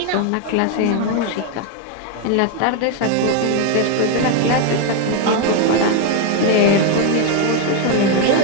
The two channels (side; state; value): both; different; correlation 0.01